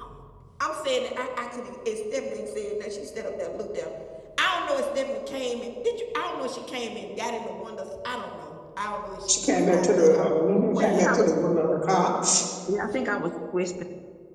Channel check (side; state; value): both; identical; correlation 1.00